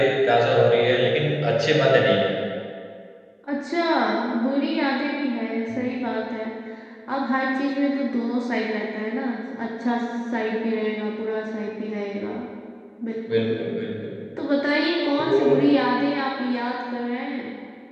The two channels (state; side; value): identical; both; correlation 1.00